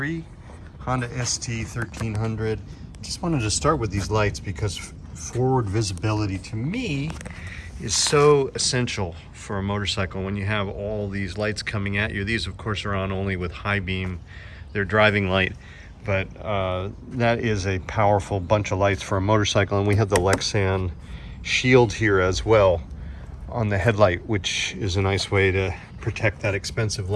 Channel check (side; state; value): both; identical; correlation 1.00